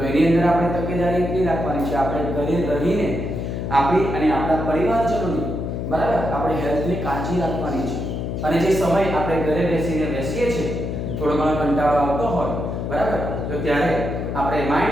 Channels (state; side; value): noise; left; hum, 3 dB below the sound